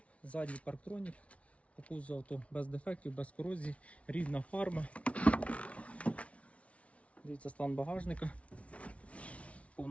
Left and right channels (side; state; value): right; late; 0.064 ms